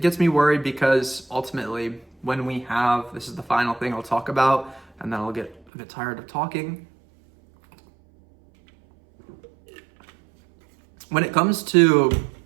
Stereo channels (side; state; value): left; drops out; at 5.6 s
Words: gets me worried because ultimately when we have, this is the final thing I'll talk about, and then I'll get a bit tired of talking. When it comes to